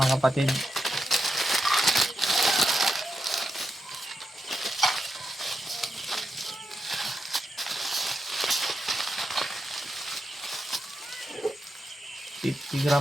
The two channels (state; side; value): normal; both; correlation 0.86